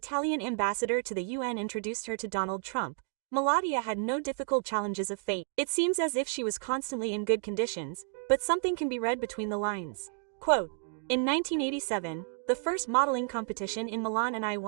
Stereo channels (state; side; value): silent; left; 57 dB below the other